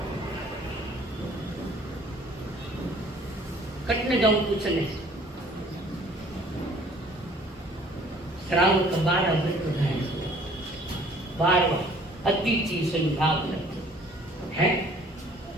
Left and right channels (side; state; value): both; normal; correlation 0.55